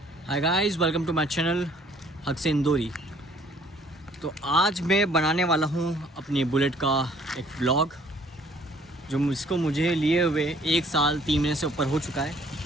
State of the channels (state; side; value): normal; both; correlation 0.59